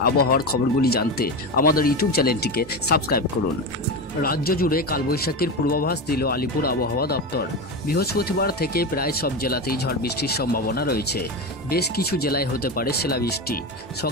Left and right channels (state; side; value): normal; both; correlation 0.19